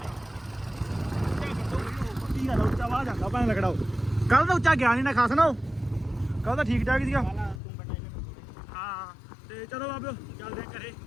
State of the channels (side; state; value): right; drops out; at 7.6 s